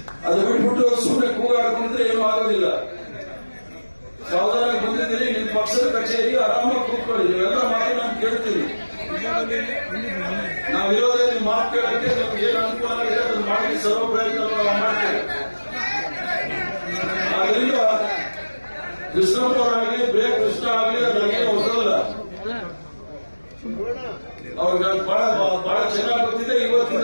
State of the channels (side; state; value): both; inverted; correlation -1.00